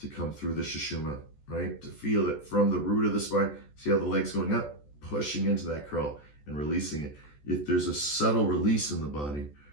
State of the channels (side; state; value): right; late; 14 ms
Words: come through the sushumna, right? To feel it from the root of the spine. See how the leg's going up, pushing into that curl and releasing it. If there's a subtle release in the body,